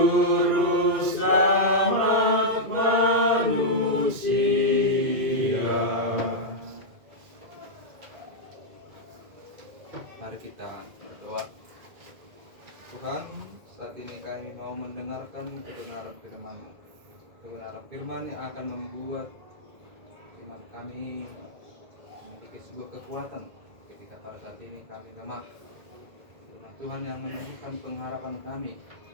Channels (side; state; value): left; late; 2.0 ms